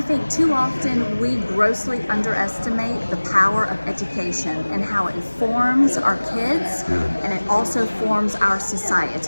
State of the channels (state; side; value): inverted; both; correlation -1.00